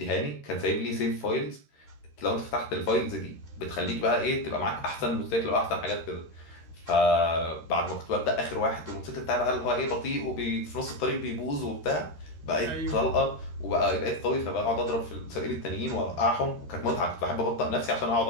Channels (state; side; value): late; right; 13 ms